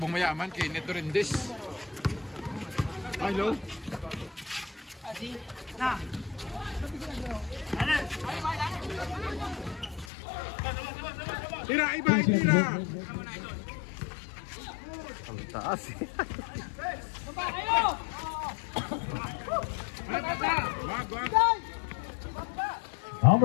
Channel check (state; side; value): drops out; right; at 10.1 s